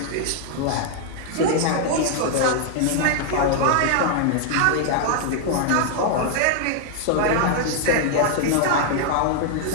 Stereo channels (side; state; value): both; different; correlation 0.00